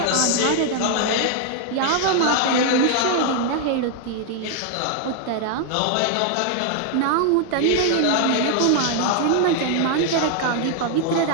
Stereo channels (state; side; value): different; both; correlation 0.00